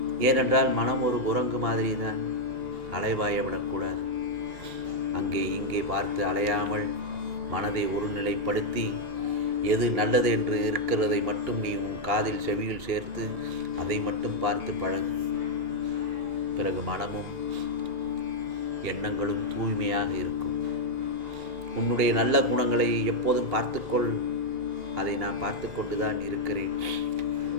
ஏனென்றால் மனம் ஒரு குரங்கு மாதிரி தான், அலைவாய விடக்கூடாது. அங்கே இங்கே பார்த்து அலையாமல் மனதை ஒருநிலைப்படுத்தி எது நல்லது என்று இருக்கிறதை மட்டும் நீ உன் காதில் செவியில் சேர்த்து அதை மட்டும் பார்த்து பழகு. பிறகு மனமும் எண்ணங்களும் தூய்மையாக இருக்கும். உன்னுடைய நல்ல குணங்களை எப்போதும் பார்த்துக்கொள். அதை நான் பார்த்து கொண்டுதான் இருக்கிறேன்.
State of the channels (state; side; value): late; left; 2.8 ms